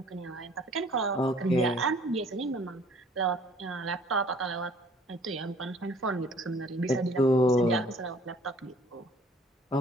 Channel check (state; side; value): normal; both; correlation 0.55